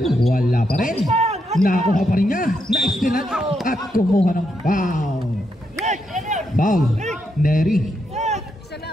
wala pa rin. Nakuha pa rin niya. Naistilan at kumuha ng foul. Foul. Neri.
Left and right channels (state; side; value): normal; both; correlation 0.80